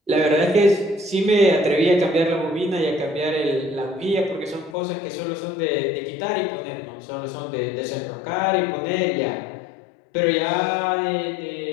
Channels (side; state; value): right; drops out; at 4.8 s